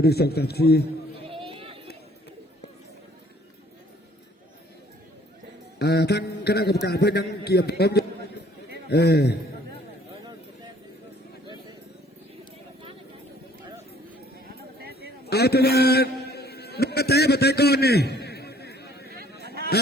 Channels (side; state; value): both; normal; correlation 0.59